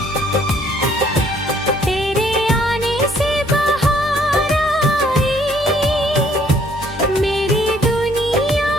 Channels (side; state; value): both; normal; correlation 0.63